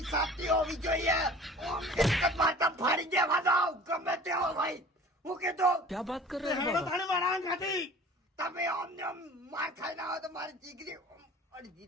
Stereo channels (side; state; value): both; normal; correlation 0.44